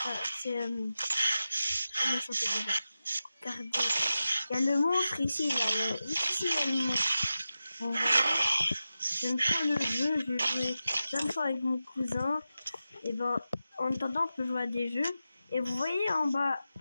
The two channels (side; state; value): both; inverted; correlation -0.92